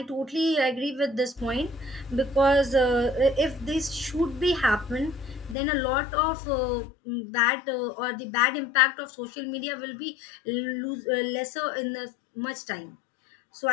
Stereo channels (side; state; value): right; drops out; at 5.6 s